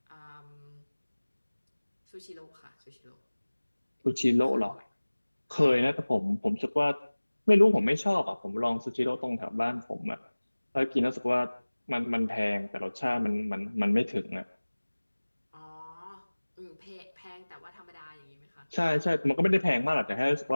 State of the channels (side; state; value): both; inverted; correlation -1.00